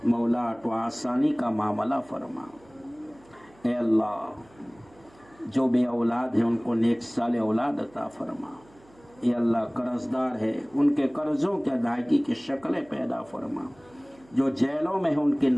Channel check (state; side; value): noise; right; hum, 28 dB below the sound